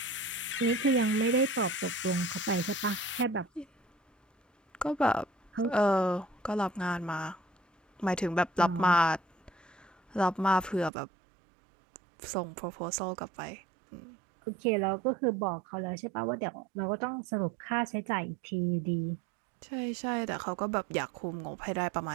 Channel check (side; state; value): left; drops out; at 10.9 s